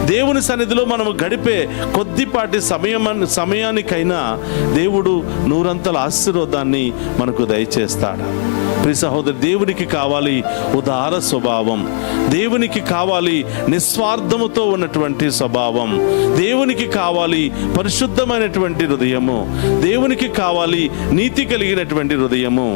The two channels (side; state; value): right; silent; digital silence